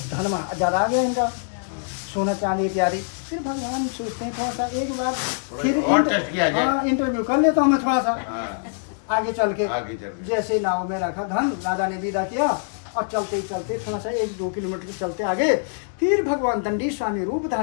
धन ज्यादा आ गया इनका, सोना चांदी इत्यादि। फिर भगवान सोचते हैं थोड़ा सा एक बार फिर इंटरव्यू कर लेता हूँ मैं थोड़ा सा आगे चल के। जैसे नाव में रखा धन, राजा ने विदा किया और चलते चलते थोड़ा सा 1-2 किलोमीटर चलते आगे, फिर भगवान दंडी स्वामी रूप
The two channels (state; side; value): silent; right; digital silence